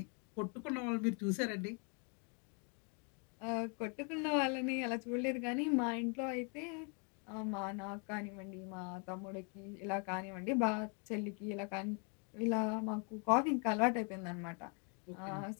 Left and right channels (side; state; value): right; quieter; 37.4 dB